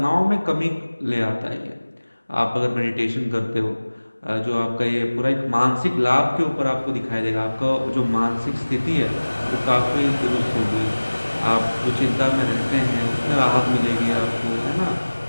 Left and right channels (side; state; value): both; inverted; correlation -1.00